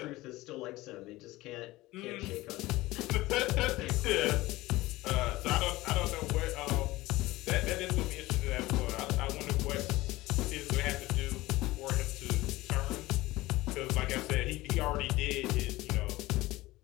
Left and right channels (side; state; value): right; quieter; 18.8 dB